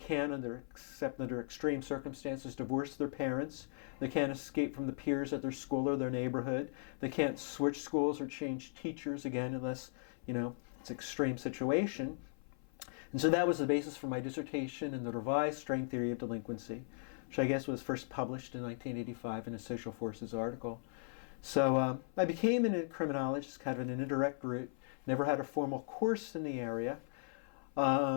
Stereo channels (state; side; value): silent; right; 53 dB below the other